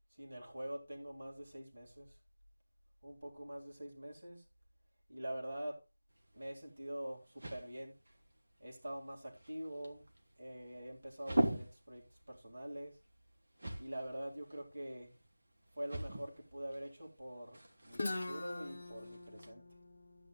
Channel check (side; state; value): both; inverted; correlation -0.97